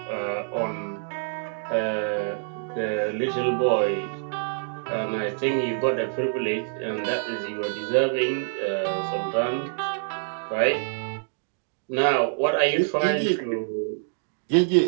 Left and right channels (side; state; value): left; silent; digital silence